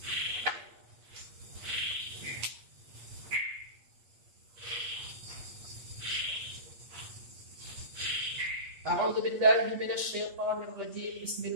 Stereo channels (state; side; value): late; left; 8.4 ms